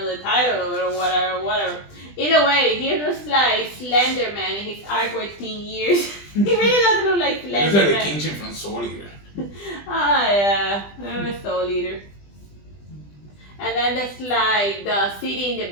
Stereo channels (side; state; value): right; late; 20 ms